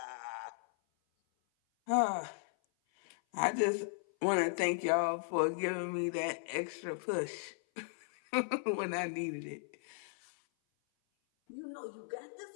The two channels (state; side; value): silent; right; 53 dB below the other